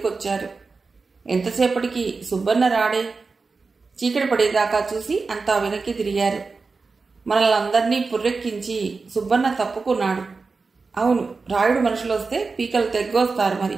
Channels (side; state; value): left; quieter; 4.3 dB